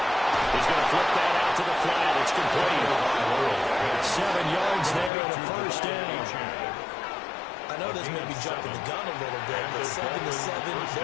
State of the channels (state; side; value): drops out; right; at 5.1 s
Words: He's going to flip that out to the flat. It's complete. 7 yards there and a first down. I know this may be jumping the gun a little bit, but 7-7,